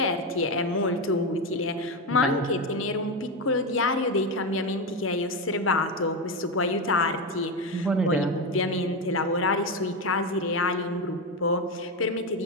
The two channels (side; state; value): both; normal; correlation 0.12